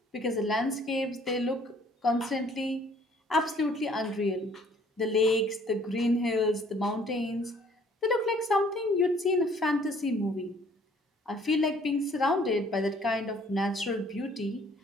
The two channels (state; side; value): normal; both; correlation 0.59